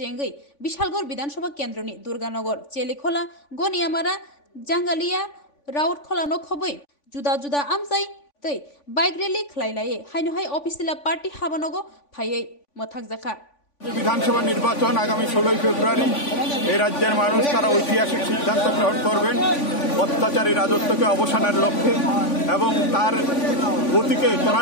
Bishalgor Vidansabha Kendroni, Durganogor, Chelikhola, Goniamara, Jangalia, Raurkhola no Khoboi, Juda Juda Amzai, Tei, Bike Rally Klailaye, Hainohai Opisila Party Habanogo, Paye, Motakzaka. বিধানসভা নির্বাচন আগামী 16 ফেব্রুয়ারি এই রাজ্যের মানুষ তারা ঐতিহাসিক সিদ্ধান্ত গ্রহণ করবেন অত্যাচারী রাজত্বকে অবসানের লক্ষ্যে এবং তার গতিকে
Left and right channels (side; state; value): right; late; 3.5 ms